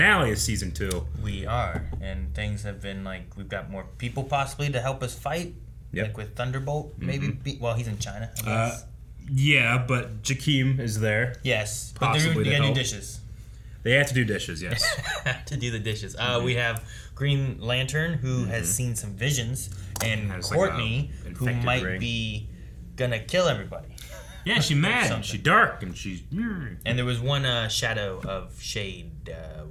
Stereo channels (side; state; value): both; identical; correlation 1.00